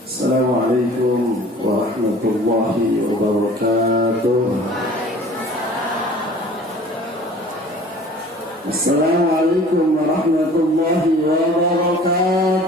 Assalamualaikum warahmatullahi wabarakatuh. Assalamualaikum warahmatullahi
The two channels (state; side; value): normal; both; correlation 0.47